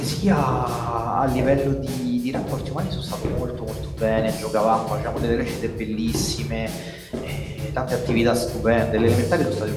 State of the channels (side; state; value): both; identical; correlation 1.00